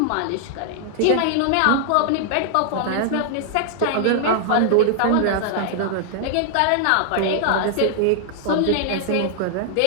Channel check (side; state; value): both; different; correlation 0.00